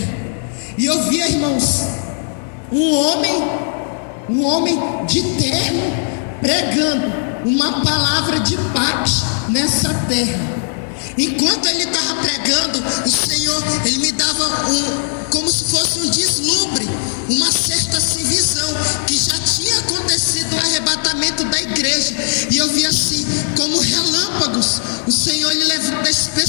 e eu via, irmãos, um homem de terno pregando uma palavra de paz nessa terra. Enquanto ele estava pregando, o Senhor, ele me dava como se fosse um deslumbre, uma certa assim, visão, que já tinha acontecido o arrebatamento da igreja, e eu via assim, como relâmpagos, o Senhor ele levando as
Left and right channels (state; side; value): silent; right; 68 dB below the other